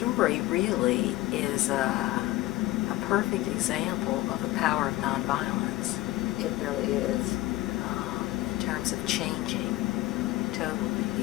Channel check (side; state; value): right; quieter; 17.6 dB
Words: really is a perfect example of the power of nonviolence. It really is. In terms of changing totally